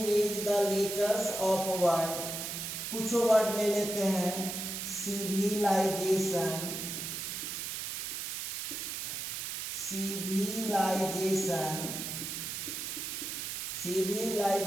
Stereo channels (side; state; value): right; noise; hiss, 4 dB below the sound